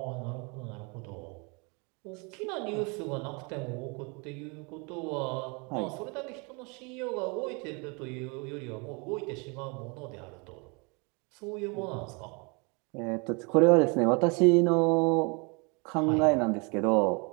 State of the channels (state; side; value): quieter; left; 31.5 dB